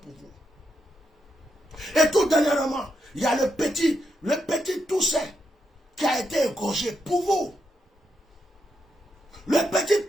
vous. Et tout dernièrement, il y a le petit Toussaint qui a été égorgé pour vous. Le petit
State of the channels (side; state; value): both; normal; correlation 0.82